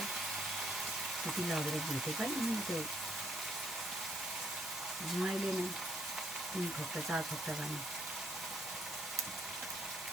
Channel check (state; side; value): normal; both; correlation 0.69